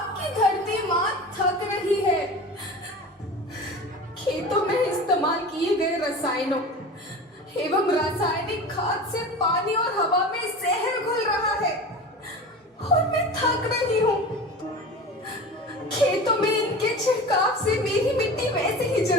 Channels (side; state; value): both; normal; correlation 0.33